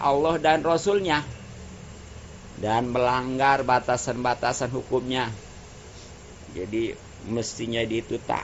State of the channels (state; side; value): identical; both; correlation 1.00